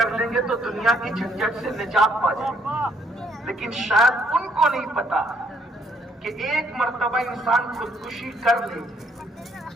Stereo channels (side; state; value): both; normal; correlation 0.68